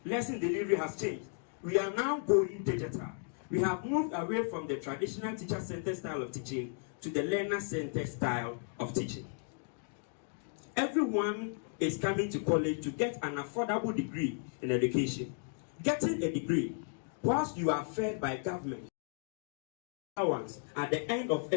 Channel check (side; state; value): right; silent; 55 dB below the other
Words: Lesson delivery has changed. We are now going digital. We have moved away from the traditional teacher-centered style of teaching to the learner-centered style of teaching. Everyone is coming to college to get an affordable degree in education. Getting a degree, whilst you are fed by government, allowance at the end of